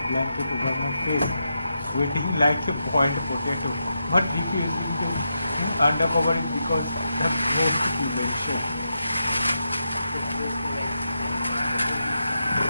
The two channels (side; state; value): both; inverted; correlation -0.86